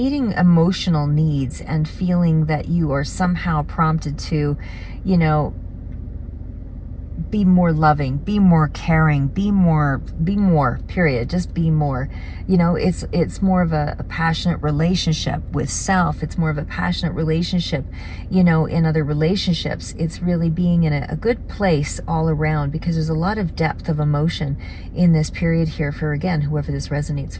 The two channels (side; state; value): both; identical; correlation 1.00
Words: emotional needs and feeling that you are somehow prompted to, be more loving, be more caring, be more, period. Just be more. It's more of a passionate relationship with self. It's more of a passionate relationship, in other relationships. It's really being in a good place all around, because there's a lot of depth of emotion in this period here for, again, whoever this resonates